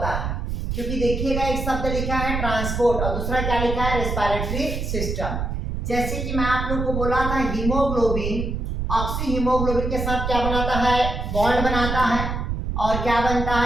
है। क्योंकि देखिएगा एक शब्द लिखा है ट्रांसपोर्ट और दूसरा क्या लिखा है, रेस्पिरेटरी सिस्टम। जैसे कि मैं आप लोग को बोला था हीमोग्लोबिन ऑक्सी हीमोग्लोबिन के साथ क्या बनाता है, बॉन्ड बनाता है और क्या बनता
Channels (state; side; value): noise; right; rumble, 3 dB below the sound